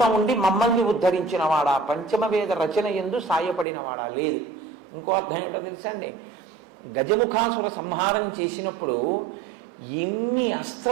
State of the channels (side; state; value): left; drops out; at 3.7 s